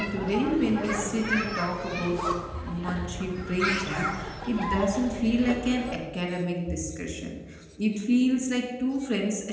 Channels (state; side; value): identical; both; correlation 1.00